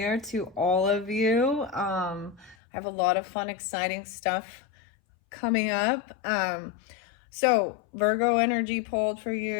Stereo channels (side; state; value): right; drops out; at 2.6 s